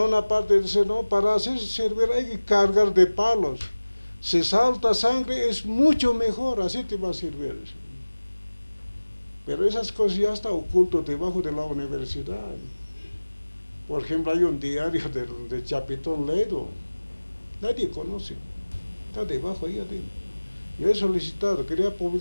parte dice, no, para hacerse servir hay que cargar de palos. Si salta sangre es mucho mejor, así te va a servir. Pero esas cosas ya están ocultas debajo de la universidad. Por ejemplo, hay un diario de Chapitón Ledo. Nadie conoce, está debajo ahí adentro. Yo he solicitado, quería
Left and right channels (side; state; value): both; inverted; correlation -1.00